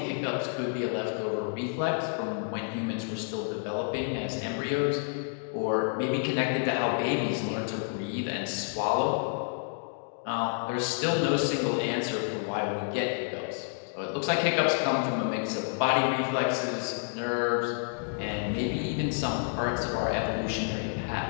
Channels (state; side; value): silent; right; 57 dB below the other